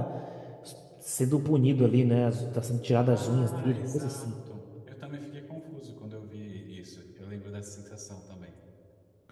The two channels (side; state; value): both; identical; correlation 1.00